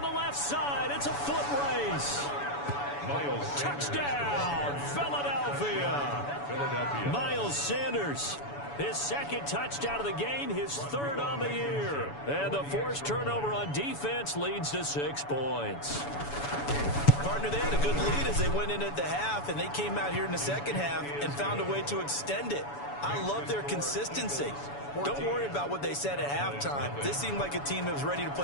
the left side. It's a foot race. Miles Touchdown, Philadelphia. Miles Sanders, his second touchdown of the game, his third on the year. And the forced turnover on defense leads to 6 points. Partner, they had a good lead as they went in at the half, and they came out here in the second half and found a way to extend it. I love their consistency. Don't worry about what they said at halftime. This seemed like a team that was ready to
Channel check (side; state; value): right; late; 7.0 ms